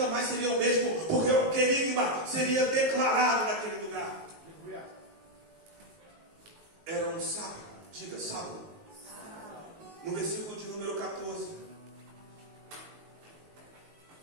mais seria o mesmo, porque o querigma seria declarado naquele lugar. Era um sábado. Diga, sábado. No versículo de número 14,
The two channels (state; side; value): late; left; 19 ms